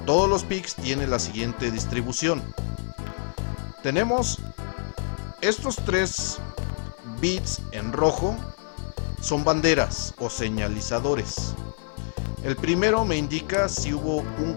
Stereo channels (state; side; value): silent; right; digital silence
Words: los PICs tiene la siguiente distribución. Tenemos estos 3 bits en rojo, son banderas o señalizadores. El primero me indica si hubo un